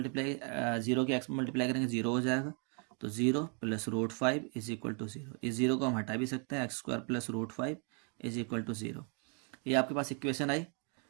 0 के x में मल्टीप्लाई करेंगे 0 हो जाएगा, तो 0 + √5 = 0। इस 0 को हम हटा भी सकते हैं, x² + √5 = 0। ये आपके पास इक्वेशन आई।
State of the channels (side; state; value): left; quieter; 39.0 dB